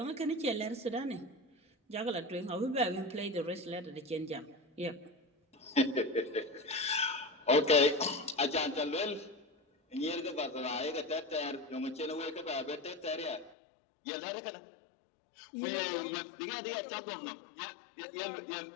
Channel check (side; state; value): right; drops out; at 13.6 s